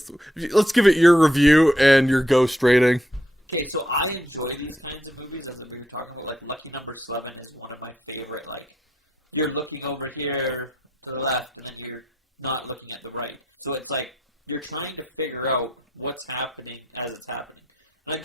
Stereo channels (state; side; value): normal; both; correlation 0.76